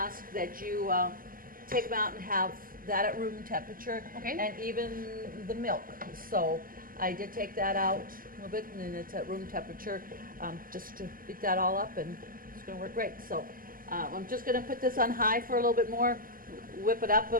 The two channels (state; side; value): late; left; 0.41 ms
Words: that you take them out and have that at room temperature. Okay. And even the milk. So I did take that out a little bit, and then it's at room temperature, just to beat that all up, and it's going to work great. So I'm just going to put this on high for a little bit more, whip it up a